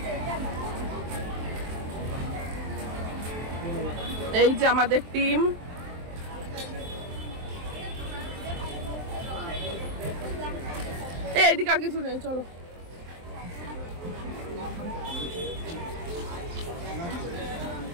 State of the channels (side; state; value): left; late; 23 ms